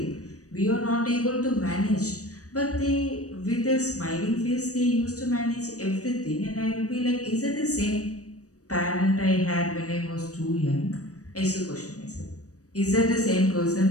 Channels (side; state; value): right; late; 0.66 ms